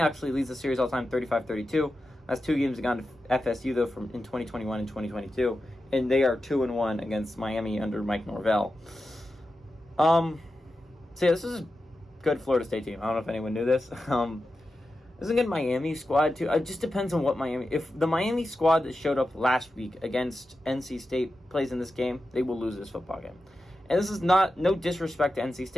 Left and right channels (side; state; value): both; normal; correlation 0.91